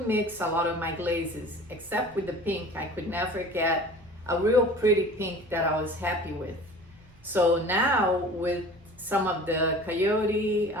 mix a lot of my glazes, except with the pink. I could never get a real pretty pink that I was happy with. So now with some of the Coyote,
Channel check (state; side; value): noise; right; rumble, 29 dB below the sound